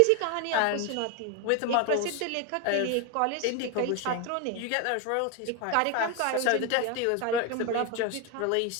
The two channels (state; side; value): different; both; correlation 0.01